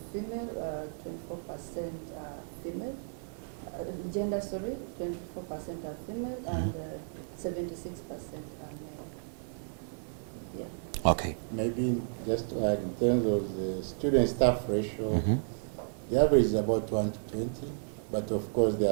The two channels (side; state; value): left; silent; 56 dB below the other